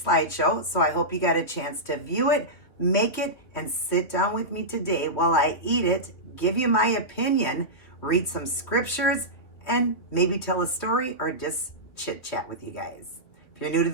slideshow, so I hope you got a chance to view it, make it, and sit down with me today while I eat it, give you my opinion, read some scriptures, and maybe tell a story or just chit chat with you guys. If you're new to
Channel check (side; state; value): right; late; 2.9 ms